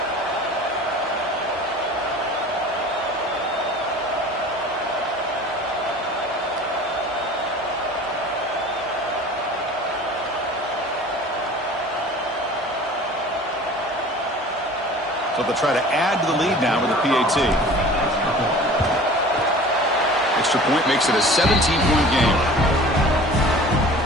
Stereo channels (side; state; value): both; normal; correlation 0.43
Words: So they'll try to add to the lead now with a PAT. Extra point makes it a 17-point game.